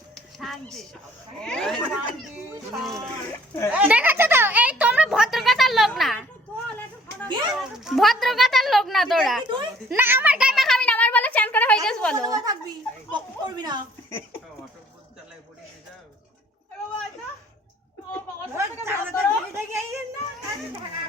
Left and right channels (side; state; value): both; normal; correlation 0.57